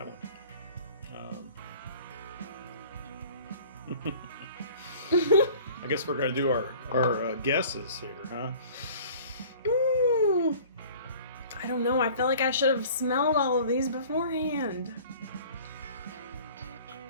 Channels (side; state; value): both; inverted; correlation -0.47